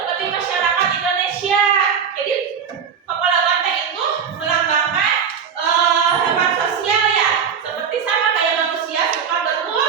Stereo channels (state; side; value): quieter; left; 7.0 dB